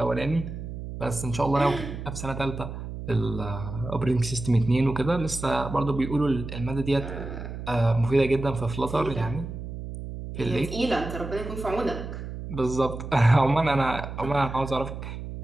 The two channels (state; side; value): noise; right; hum, 8 dB below the sound